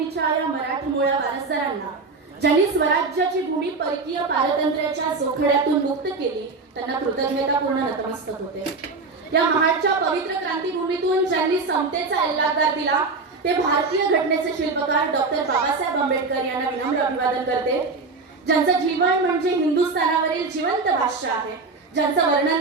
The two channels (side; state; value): left; quieter; 4.0 dB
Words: या मराठमोळ्या वारसदारांना ज्यांनी स्वराज्याची भूमी परकीय पारतंत्र्याच्या जोखड्यातून मुक्त केली त्यांना कृतज्ञतापूर्ण नतमस्तक होते. या महाडच्या पवित्र क्रांतीभूमीतून ज्यांनी समतेचा एल्लागार दिला ते भारतीय घटनेचे शिल्पकार डॉक्टर बाबासाहेब आंबेडकर यांना विनम्र अभिवादन करते. ज्यांचं जीवन म्हणजे हिंदुस्थानावरील जिवंत भाष्य आहे, ज्यांचं